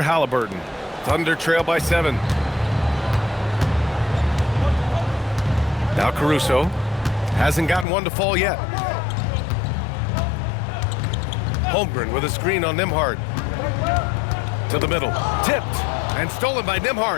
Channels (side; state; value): right; drops out; at 7.9 s